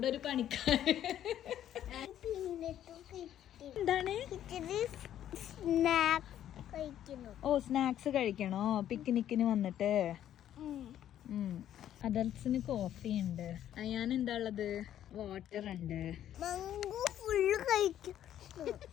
ഒരു പണിക്കാരൻ. എന്താണ്? ഓ സ്നാക്സ് കഴിക്കണോ പിക്നിക്കിന് വന്നിട്ട്? അഡൽസിന് കോഫി ഉണ്ട്. ഞാൻ എന്താ ഉള്ളത്? വാട്ടർ ഉണ്ട്.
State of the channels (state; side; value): quieter; right; 11.2 dB